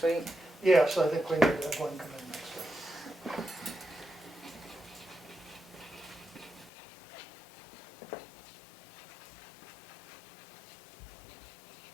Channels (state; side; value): drops out; right; at 6.7 s